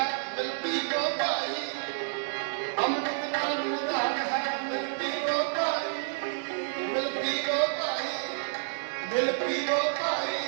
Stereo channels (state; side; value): silent; left; digital silence